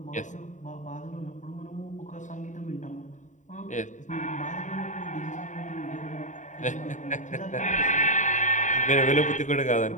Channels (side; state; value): right; late; 0.36 ms